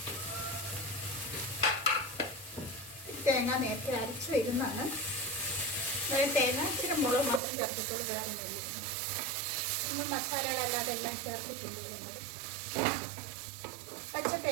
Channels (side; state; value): left; drops out; at 7.4 s